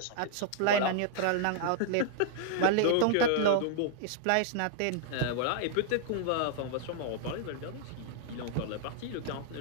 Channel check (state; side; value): different; both; correlation -0.01